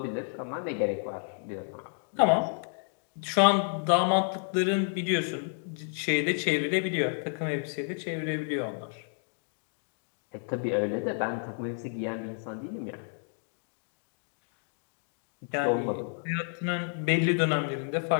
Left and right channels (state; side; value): silent; right; 57 dB below the other